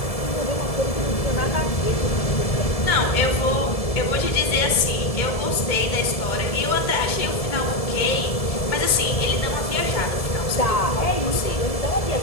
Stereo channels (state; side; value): late; right; 1.7 ms